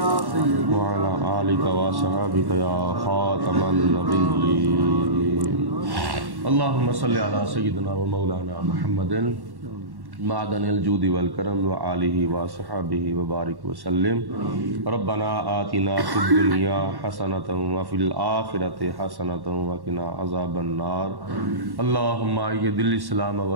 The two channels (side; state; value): left; late; 1.1 ms